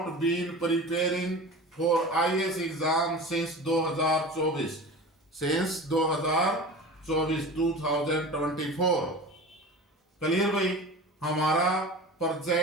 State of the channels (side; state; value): both; normal; correlation 0.34